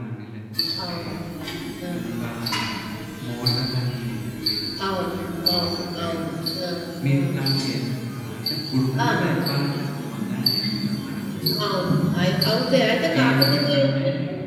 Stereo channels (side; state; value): both; identical; correlation 1.00